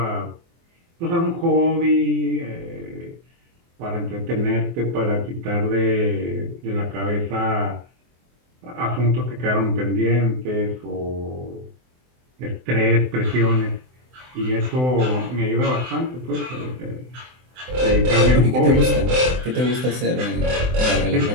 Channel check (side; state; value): left; late; 24 ms